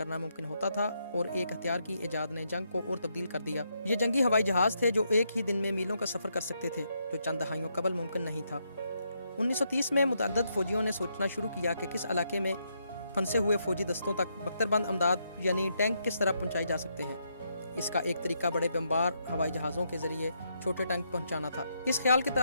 ممکن ہوتا تھا، اور ایک ہتھیار کی ایجاد نے جنگ کو اور تبدیل کر دیا۔ یہ جنگی ہوائی جہاز تھے جو ایک ہی دن میں میلوں کا سفر کر سکتے تھے، جو چند دہائیوں قبل ممکن نہیں تھا۔ 1930 میں متعدد فوجیوں نے سوچنا شروع کیا کہ کس علاقے میں پھنسے ہوئے فوجی دستوں تک بختربند امداد یعنی ٹینک کس طرح پہنچائی جا سکتے ہیں۔ اس کا ایک طریقہ بڑے بمبار ہوائی جہازوں کے ذریعے چھوٹے ٹینک پہنچانا تھا۔ اس خیال کے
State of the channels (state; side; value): inverted; both; correlation -0.78